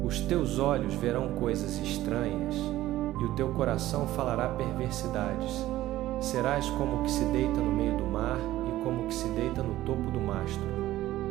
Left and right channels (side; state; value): left; quieter; 15.1 dB